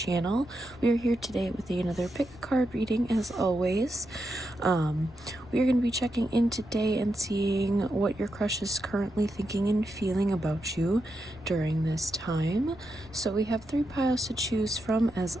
We are here today with another pick a card reading as always. We are going to be checking in today and seeing what your crush is currently thinking and feeling about you during this time. So we have 3 piles to choose from as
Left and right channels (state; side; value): noise; left; rumble, 21 dB below the sound